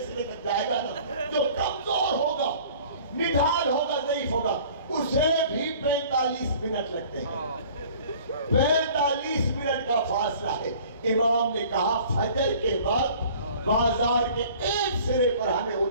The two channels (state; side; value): inverted; both; correlation -0.49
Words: سرے تک جائے گا نا، جو کمزور ہوگا، نڈھال ہوگا، ضعیف ہوگا، اسے بھی 45 منٹ لگتے ہیں. 45 منٹ کا فاصلہ ہے. امام نے کہا فجر کے وقت بازار کے ایک سرے پر ہمیں